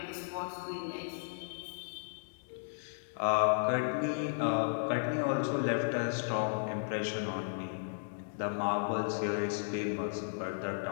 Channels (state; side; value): silent; right; digital silence